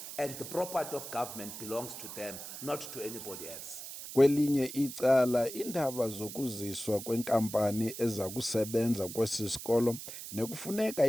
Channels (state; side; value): noise; right; hiss, 10 dB below the sound